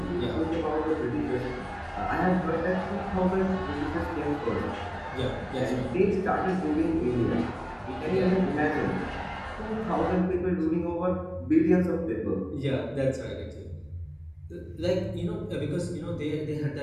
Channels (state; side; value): identical; both; correlation 1.00